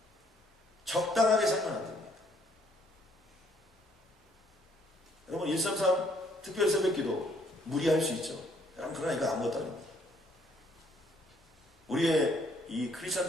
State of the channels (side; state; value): both; normal; correlation 0.66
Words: 적당하게 살면 안 됩니다. 여러분 133 특별 새벽기도 무리할 수 있죠. 그러나 이거 아무것도 아닙니다. 우리의 이